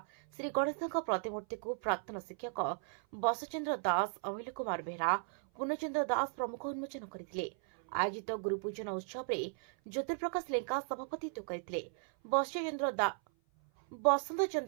ଶ୍ରୀ ଗଣେଶଙ୍କ ପ୍ରତିମୂର୍ତ୍ତିକୁ ପ୍ରାକ୍ତନ ଶିକ୍ଷକ ବସଚନ୍ଦ୍ର ଦାସ, ଅମିଲ କୁମାର ବେହେରା, ପୂର୍ଣ୍ଣଚନ୍ଦ୍ର ଦାସ ପ୍ରମୁଖ ଉନ୍ମୋଚନ କରିଥିଲେ। ଆୟୋଜିତ ଗୁରୁପୂଜନ ଉତ୍ସବରେ ଜ୍ୟୋତିପ୍ରକାଶ ଲେଙ୍କା ସଭାପତିତ୍ୱ କରିଥିଲେ। ବସନ୍ତ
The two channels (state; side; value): silent; left; 54 dB below the other